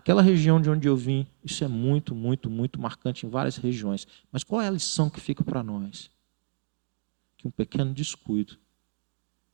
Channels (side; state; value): left; silent; digital silence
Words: região de onde eu vim, isso é muito, muito, muito marcante em várias regiões. Mas qual é a lição que fica para nós? Que um pequeno descuido,